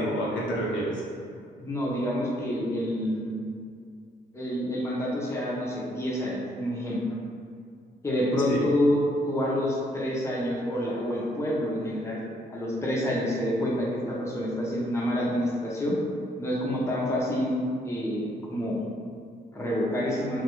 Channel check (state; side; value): normal; both; correlation 0.69